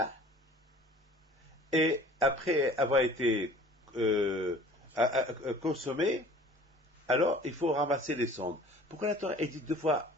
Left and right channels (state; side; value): normal; both; correlation 0.48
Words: et après avoir été consommée, alors il faut ramasser les cendres. Pourquoi la Torah est dit 2 fois